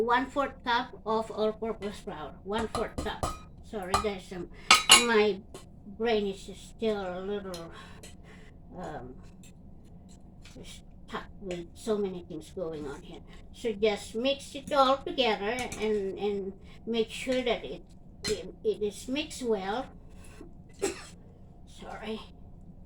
cup of all-purpose flour. 1/4 cup. Sorry guys, my brain is still a little stuck with so many things going on here. So just mix it all together and make sure that it is mixed well. Sorry.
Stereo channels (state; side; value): identical; both; correlation 1.00